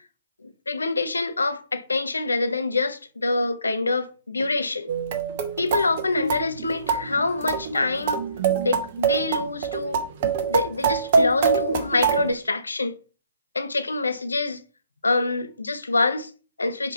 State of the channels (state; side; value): inverted; both; correlation -0.68